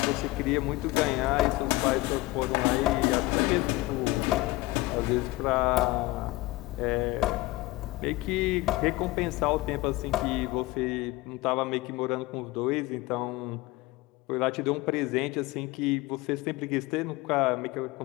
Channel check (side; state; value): right; quieter; 20.1 dB